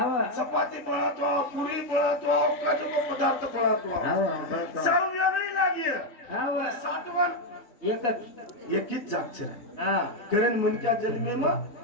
चपाती बनतो पुरी बनतो काजू पदार्थ बनतो आव सब वेगळी लागी आव सातवन एकच एकीच जागचे हा कारण मनक्या जन्मे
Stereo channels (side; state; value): right; late; 4.0 ms